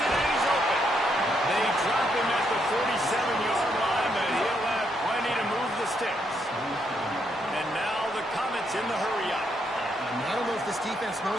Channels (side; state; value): both; normal; correlation 0.76